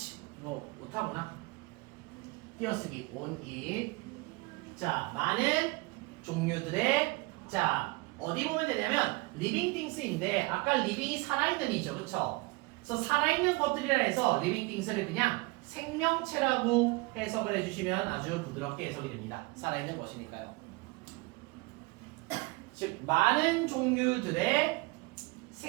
뭐 못하구나. 띄어쓰기 on it. 자, 많은 종류들의 자 어디 보면 되냐면 living things인데 아까 living이 살아있는 이죠, 그렇죠? 그래서 살아있는 것들이라 해서 living things를 그냥 생명체라고 해석을 해주시면 아주 부드럽게 해석이 됩니다. 살아있는 것이니까요. 즉 많은 종류들의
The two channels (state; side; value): quieter; left; 24.8 dB